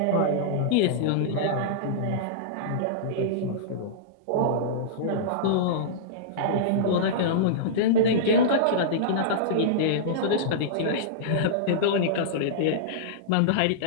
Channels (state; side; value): different; both; correlation -0.03